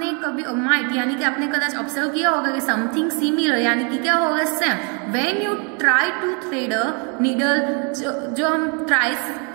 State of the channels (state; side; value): quieter; left; 36.0 dB